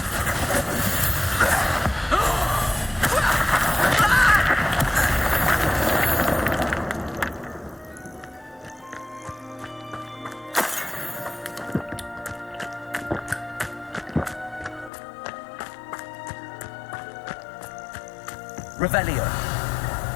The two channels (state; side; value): drops out; right; at 14.9 s